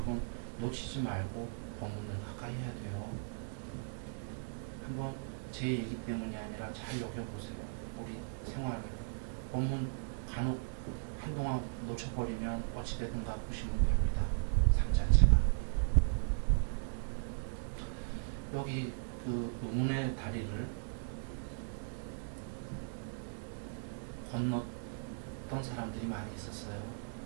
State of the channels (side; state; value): left; silent; digital silence